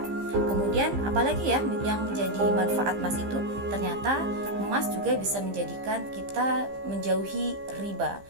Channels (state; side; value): late; left; 15 ms